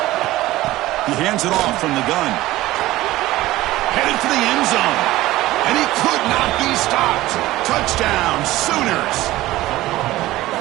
He hands it off from the gun. Headed for the end zone. And he could not be stopped. Touchdown, Sooners.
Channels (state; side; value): quieter; left; 16.9 dB